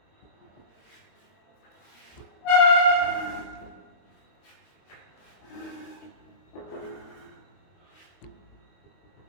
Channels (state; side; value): late; right; 22 ms